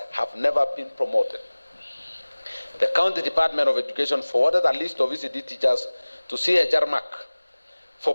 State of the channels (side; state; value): both; inverted; correlation -1.00